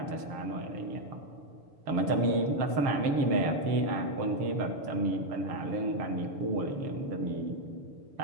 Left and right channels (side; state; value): left; late; 6.8 ms